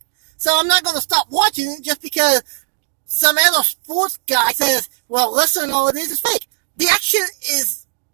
So I'm not going to stop watching it just because some other sports guy says, well, listen, all it is fake. The action is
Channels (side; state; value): left; silent; digital silence